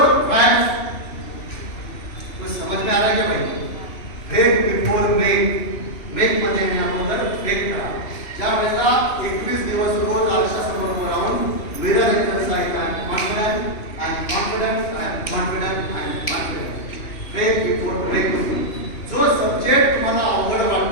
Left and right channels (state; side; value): late; right; 2.9 ms